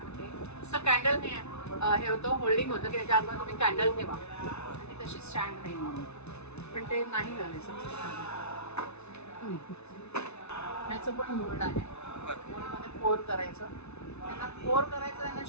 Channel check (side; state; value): right; late; 0.81 ms